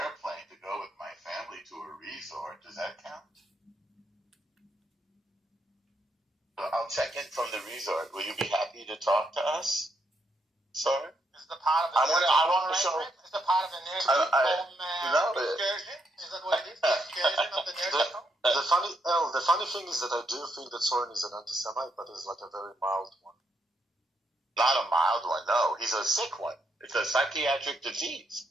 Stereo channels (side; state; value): both; normal; correlation 0.77